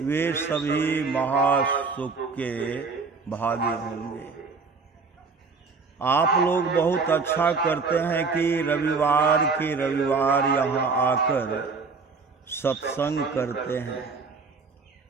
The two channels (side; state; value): left; quieter; 4.6 dB